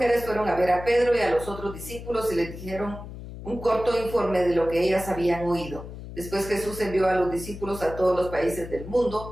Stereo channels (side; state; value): left; noise; hum, 12 dB below the sound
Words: fueron a ver a Pedro y a los otros discípulos y les dijeron un corto informe de lo que ellas habían oído. Después Jesús envió a los discípulos a todos los países del